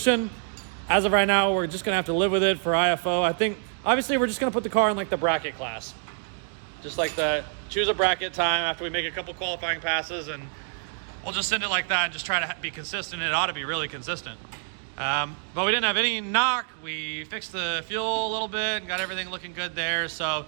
As of right now, we're just gonna have to live with it for IFO. I think, obviously, we're just gonna put the car in like the bracket class. Just like that, choose a bracket time after we make a couple qualifying passes, and we'll just send it like that and just try to be consistent. It ought to be really consistent. But we didn't have any knock. We fixed the fuel a little bit and got everything looking good there. So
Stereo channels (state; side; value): silent; left; 60 dB below the other